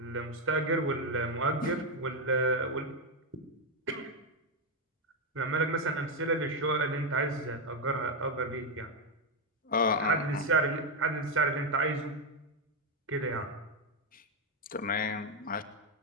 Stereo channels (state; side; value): normal; both; correlation 0.04